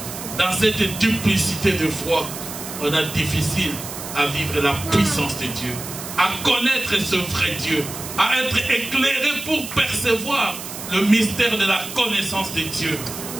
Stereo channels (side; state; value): right; noise; hiss, 10 dB below the sound